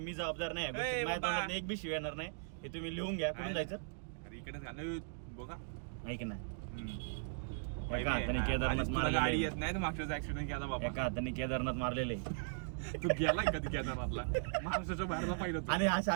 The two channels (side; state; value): left; silent; digital silence